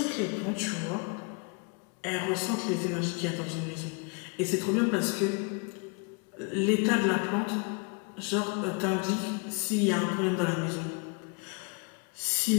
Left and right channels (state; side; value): quieter; right; 33.2 dB